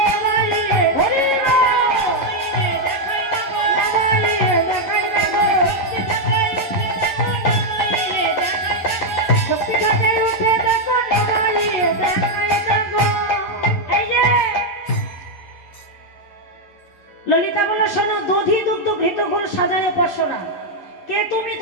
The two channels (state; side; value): late; right; 11 ms